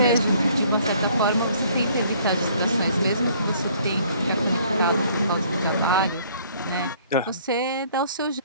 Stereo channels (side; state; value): both; inverted; correlation -0.59